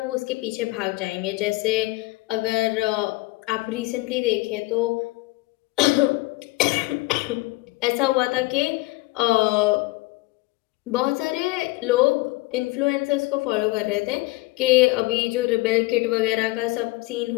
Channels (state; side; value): quieter; right; 21.6 dB